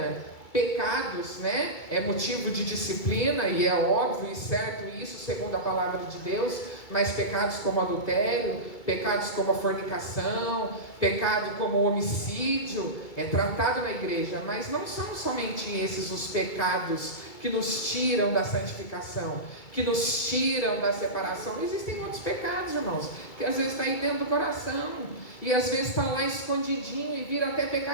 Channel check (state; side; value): late; right; 2.2 ms